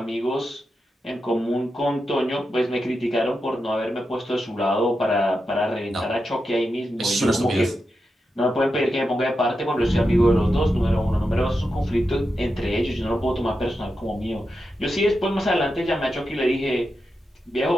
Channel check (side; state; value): both; normal; correlation 0.88